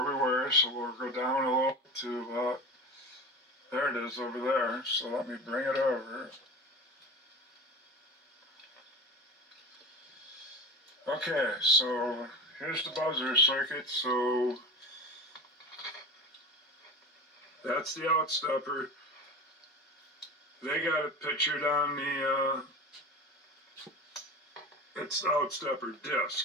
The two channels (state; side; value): normal; both; correlation 0.31